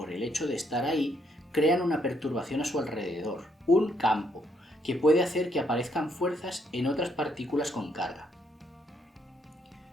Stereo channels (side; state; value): both; normal; correlation 0.72